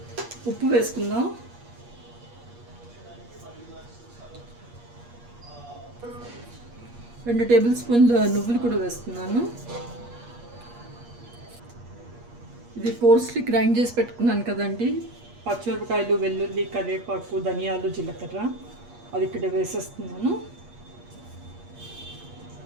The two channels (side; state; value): left; late; 8.4 ms